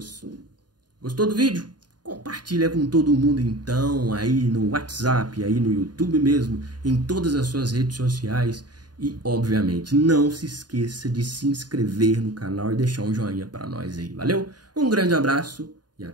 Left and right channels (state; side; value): late; left; 0.70 ms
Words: Gostou do vídeo? Compartilha com todo mundo então, aí no WhatsApp, aí no YouTube mesmo, em todas as suas redes sociais. E, obviamente, não se esqueça de se inscrever no canal e deixar um joinha para nós aí, valeu? Um grande abraço e